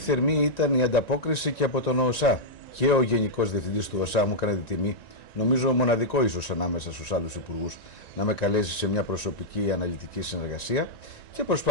ήταν η ανταπόκριση και από τον ΟΣΑ. Και ο Γενικός Διευθυντής του ΟΣΑ μου έκανε τη τιμή, νομίζω μοναδικό ίσως ανάμεσα στους άλλους υπουργούς, να με καλέσει σε μια προσωπική αναλυτική συνεργασία και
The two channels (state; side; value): late; right; 1.9 ms